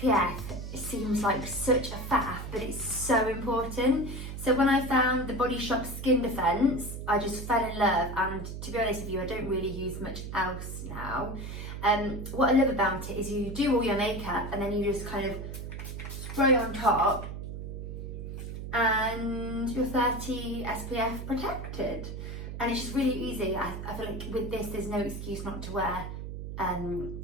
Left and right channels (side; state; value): right; noise; hum, 7 dB below the sound